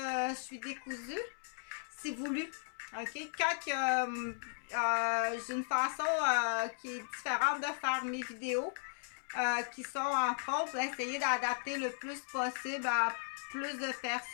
je suis décousue, c'est voulu. OK? Quand j'ai une façon qui est différente de faire mes vidéos, qui sont entre autres essayer d'adapter le plus possible à plus de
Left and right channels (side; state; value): right; silent; digital silence